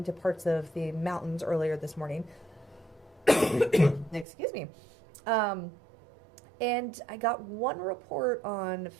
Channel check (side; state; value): left; drops out; at 4.2 s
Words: parts of the mountains earlier this morning. Excuse me. And I got one report on